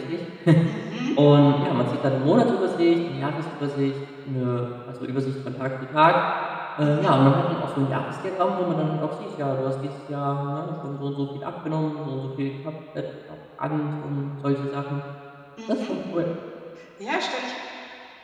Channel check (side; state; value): both; identical; correlation 1.00